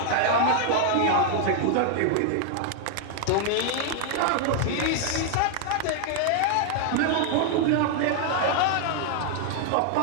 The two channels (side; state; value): both; different; correlation 0.00